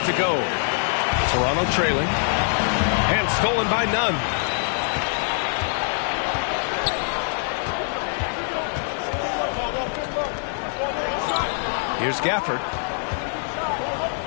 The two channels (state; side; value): silent; right; 59 dB below the other